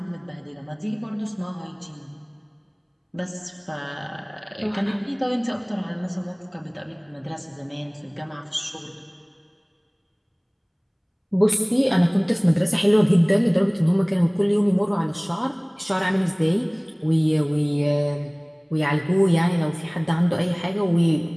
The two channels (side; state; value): both; identical; correlation 1.00